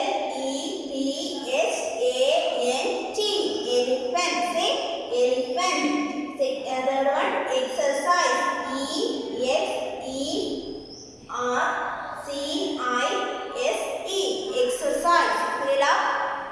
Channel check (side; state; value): both; identical; correlation 1.00